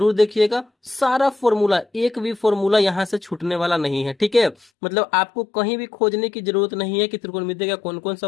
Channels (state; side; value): drops out; right; at 4.7 s